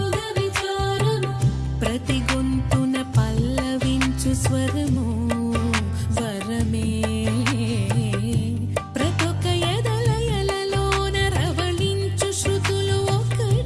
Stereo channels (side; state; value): both; identical; correlation 1.00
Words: ప్రతి గొంతున పల్లవించు స్వరము వరమే ప్రతొక ఎదలయలలోన రవళించు శృతులు